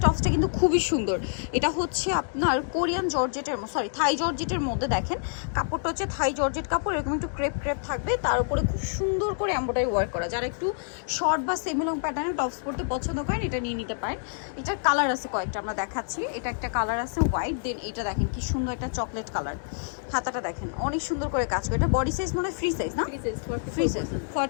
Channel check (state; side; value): silent; right; digital silence